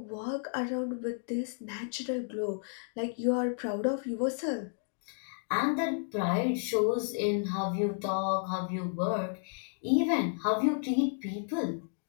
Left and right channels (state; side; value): silent; right; digital silence